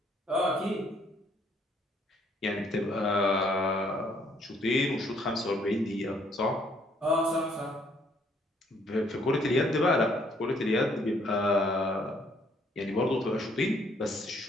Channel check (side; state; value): both; normal; correlation 0.66